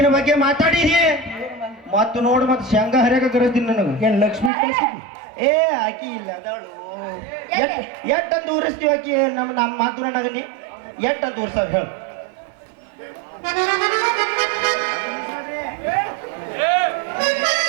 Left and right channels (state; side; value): drops out; left; at 4.5 s